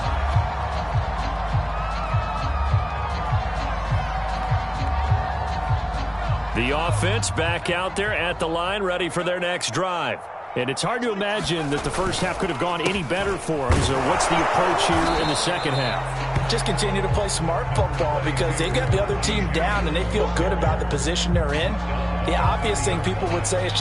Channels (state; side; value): identical; both; correlation 1.00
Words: The offense back out there at the line, ready for their next drive. And it's hard to imagine that the first half could have gone any better for them. So what's the approach here in the second half? Just continue to play smart football because they got the other team down and they feel good about the position they're in. The obvious thing people would say is